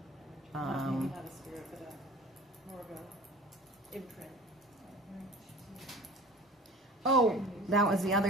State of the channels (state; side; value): normal; both; correlation 0.43